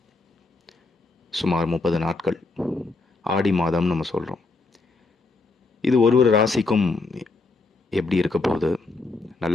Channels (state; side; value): quieter; right; 3.6 dB